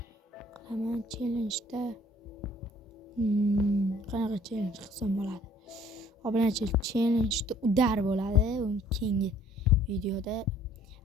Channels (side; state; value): both; normal; correlation 0.57